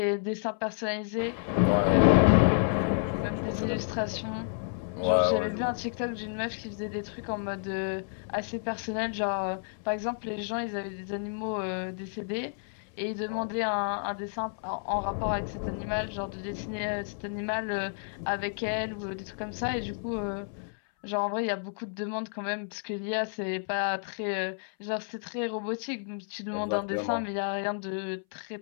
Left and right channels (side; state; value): right; silent; 58 dB below the other